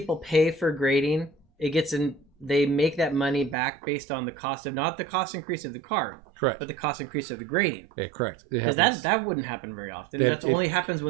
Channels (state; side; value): drops out; left; at 3.6 s